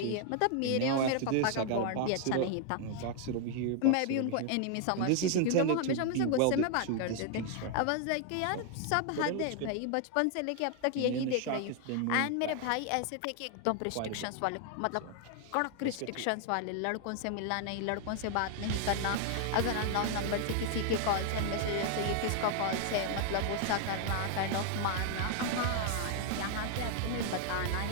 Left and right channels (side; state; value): both; different; correlation 0.00